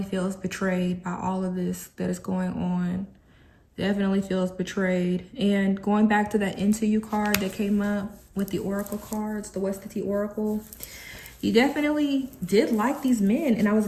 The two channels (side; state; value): both; identical; correlation 1.00